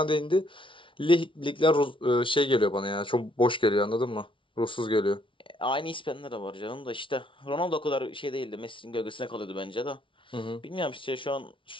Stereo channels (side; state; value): right; late; 0.25 ms